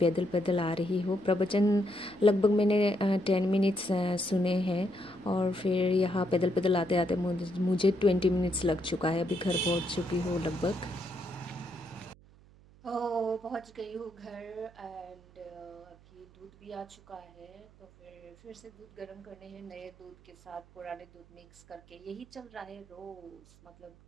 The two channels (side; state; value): right; noise; hum, 25 dB below the sound